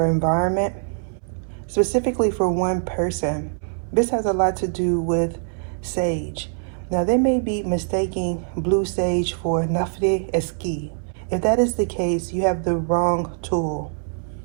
environment, specifically for one person. This has a lot to do with sage. Now they may be mistaking blue sage for Nafre Eski. If that is the case, you have the wrong tool.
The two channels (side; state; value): left; silent; 63 dB below the other